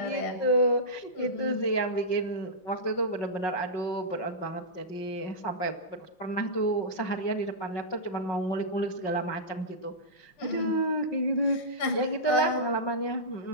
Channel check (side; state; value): right; late; 5.4 ms